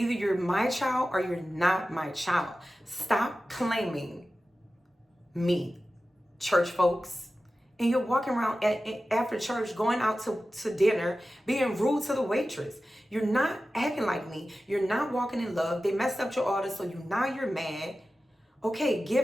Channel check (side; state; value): both; normal; correlation 0.94